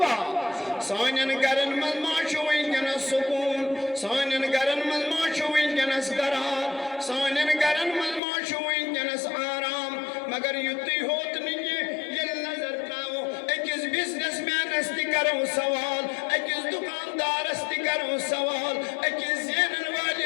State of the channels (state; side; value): drops out; right; at 8.2 s